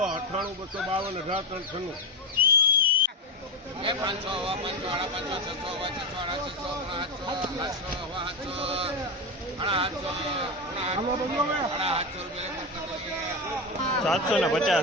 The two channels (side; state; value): both; normal; correlation 0.14